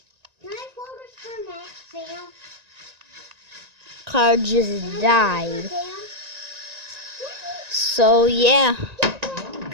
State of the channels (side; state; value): left; late; 1.9 ms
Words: Can I focus for Max, Sam? car just Can I died. focus for Sam? So yeah,